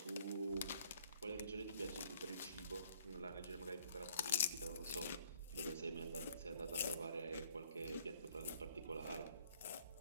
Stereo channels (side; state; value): both; inverted; correlation -0.62